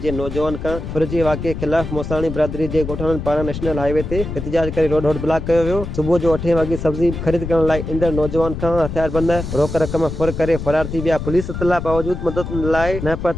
जे नौजवान खां फुरिजे वाक़िए ख़िलाफ़ मोसाणी बिरादरी जे ॻोठाणनि पारां नेशनल हाईवे ते एहतजाज करे रोड ब्लॉक कयो वियो। सुबुह जो 8 वॻे सब्जी ख़रीद करण लाइ ईंदड़ नौजवान खां हथियारबंद रोक रक़म फुर करे फरार थी विया। पुलिस इतला बावजूद मदद लाइ न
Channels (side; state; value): left; noise; rumble, 6 dB below the sound